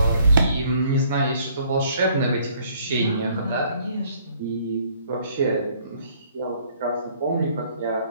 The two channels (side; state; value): both; inverted; correlation -0.62